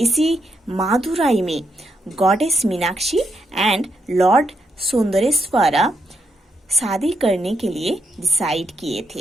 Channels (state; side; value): normal; both; correlation 0.80